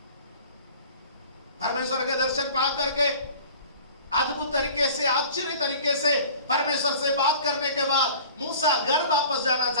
परमेश्वर के दर्शन पा करके अद्भुत तरीके से, आश्चर्य तरीके से परमेश्वर से बात करने के बाद मूसा घर वापस जाना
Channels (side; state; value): both; inverted; correlation -0.44